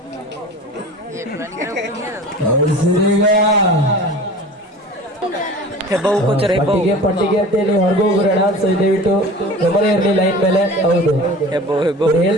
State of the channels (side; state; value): both; normal; correlation 0.39